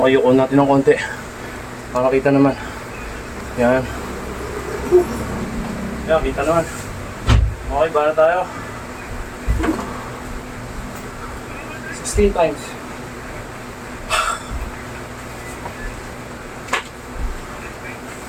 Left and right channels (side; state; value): both; identical; correlation 1.00